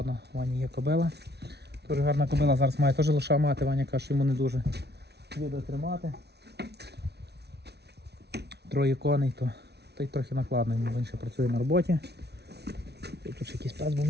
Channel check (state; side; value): late; left; 0.49 ms